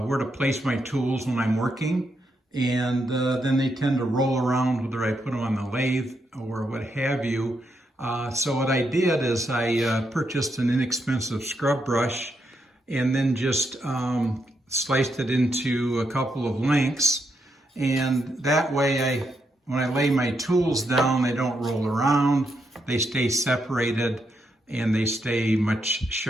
to place my tools when I'm working, and then they tend to roll around whether I put them on the lathe or what have you. So what I did is I purchased an inexpensive scrub brush and then just sliced it into a couple of lengths, and that way when I lay my tools down, they don't roll around, they stay separated, and they stay much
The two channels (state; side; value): normal; both; correlation 0.80